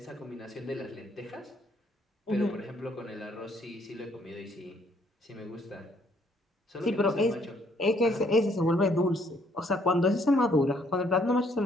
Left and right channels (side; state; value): both; normal; correlation 0.67